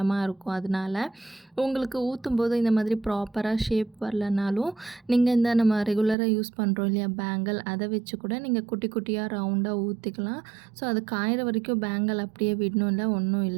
இருக்கும். அதனால் உங்களுக்கு ஊற்றும்போது இந்த மாதிரி ப்ராப்பராக ஷேப் வரலனாலும் நீங்கள் இந்த நம்ம ரெகுலராக யூஸ் பண்ணுறோம் இல்லையா பேங்கிள், அதை வச்சு கூட நீங்கள் குட்டி குட்டியாக ரவுண்டாக ஊற்றிக்கலாம். ஸோ அது காயிற வரைக்கும் பேங்கிள் அப்படியே விடணும் இல்லை, ஒன்றும்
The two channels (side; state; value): left; drops out; at 6.2 s